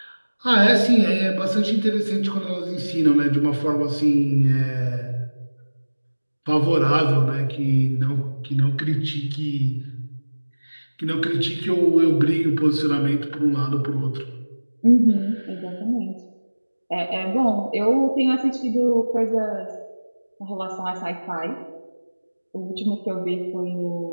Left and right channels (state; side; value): inverted; both; correlation -1.00